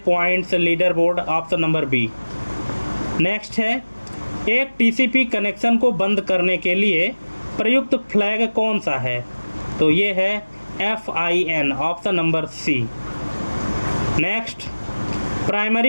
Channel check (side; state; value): both; inverted; correlation -1.00